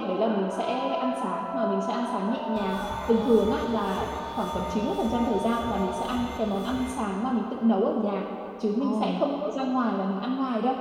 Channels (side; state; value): both; identical; correlation 1.00